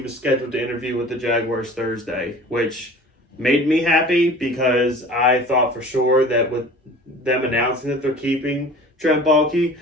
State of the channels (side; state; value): both; normal; correlation 0.43